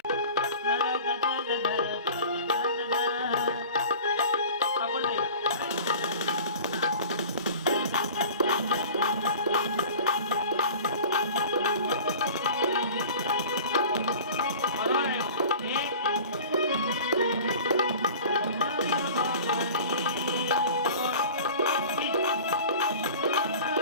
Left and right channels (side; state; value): both; inverted; correlation -0.41